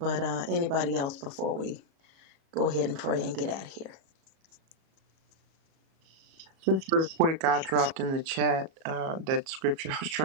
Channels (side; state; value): left; late; 37 ms